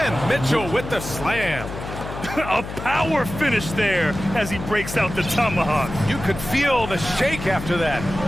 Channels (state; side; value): noise; left; hum, 9 dB below the sound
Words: Mitchell with the slam. A power finish there as he breaks out the tomahawk. You could feel the shake after that.